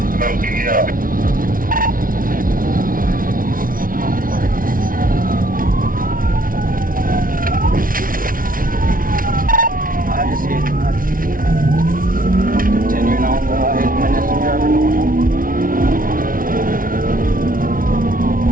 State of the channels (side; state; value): left; late; 0.41 ms